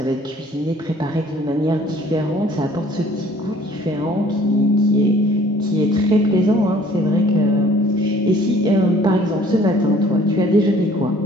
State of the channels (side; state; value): both; normal; correlation 0.55